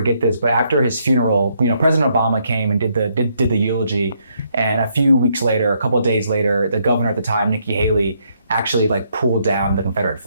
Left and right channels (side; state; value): both; inverted; correlation -0.73